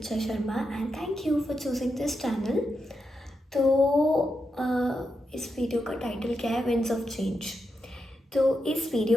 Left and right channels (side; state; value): both; normal; correlation 0.85